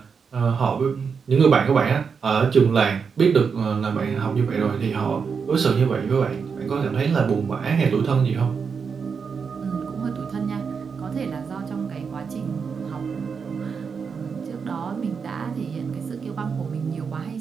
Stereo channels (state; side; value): quieter; left; 5.9 dB